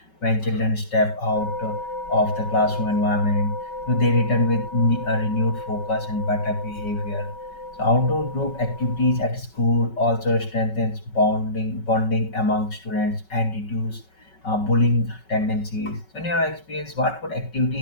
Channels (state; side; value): late; right; 5.3 ms